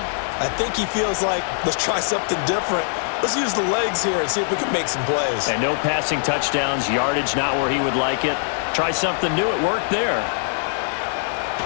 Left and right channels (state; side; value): silent; right; 64 dB below the other